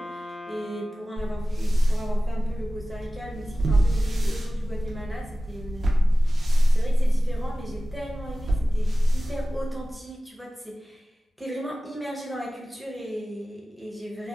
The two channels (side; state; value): both; normal; correlation 0.96